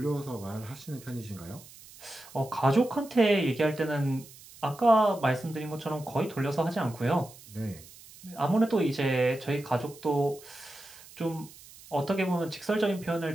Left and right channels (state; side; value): noise; right; hiss, 20 dB below the sound